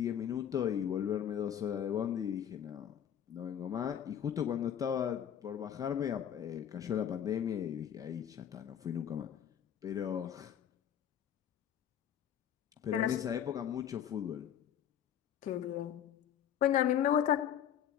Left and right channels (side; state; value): right; quieter; 9.5 dB